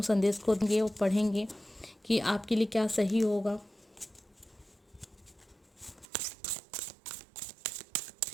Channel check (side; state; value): left; drops out; at 6.1 s